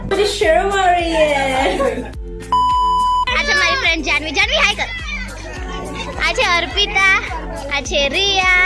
આ છે મારી ફ્રેન્ડ જાનવી. જાનવી હાય કર. આ છે અર્પિતા, આ છે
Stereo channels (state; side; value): identical; both; correlation 1.00